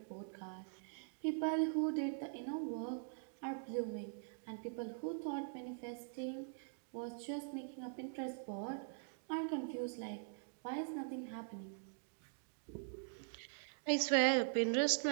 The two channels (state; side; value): silent; left; digital silence